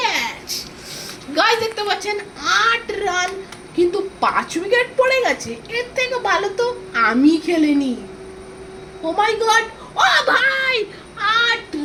গাইস দেখতে পাচ্ছেন 8 রান, কিন্তু 5 উইকেট পড়ে গেছে, এর থেকে ভালো তো আমি খেলিনি। ও মাই গড, ও ভাই 8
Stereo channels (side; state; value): both; identical; correlation 1.00